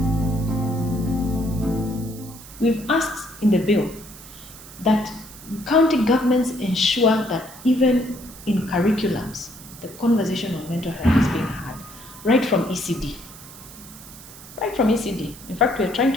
We've asked in the bill that county governments ensure that even in curriculums, the conversation on mental health is being had, right from ECD. Right from ECD. In fact, we're trying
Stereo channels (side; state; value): right; noise; hiss, 17 dB below the sound